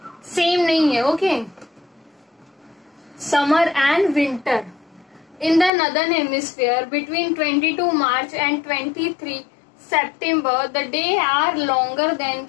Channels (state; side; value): drops out; right; at 5.7 s